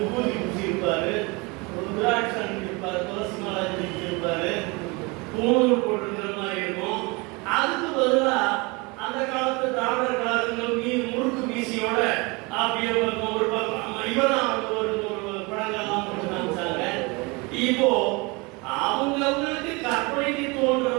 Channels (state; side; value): quieter; left; 27.1 dB